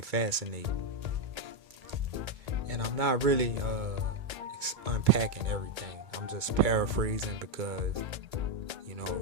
and I'm not really unpacking everything. I'm just paraphrasing because, you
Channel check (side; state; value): left; late; 2.2 ms